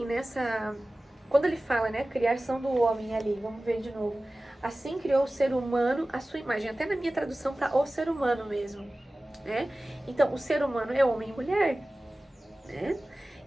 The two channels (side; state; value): both; normal; correlation 0.97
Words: quando ele fala, né, criação do homem ali, vamos ver de novo. Assim criou o ser humano à sua imagem. Até na minha tradução tá o ser humano mesmo, né? Então, o ser humano é homem e mulher, né?